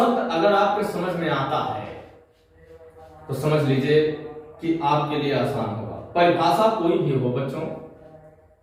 अगर आपके समझ में आता है तो समझ लीजिए कि आपके लिए आसान होगा। परिभाषा कोई भी हो बच्चों,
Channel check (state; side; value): identical; both; correlation 1.00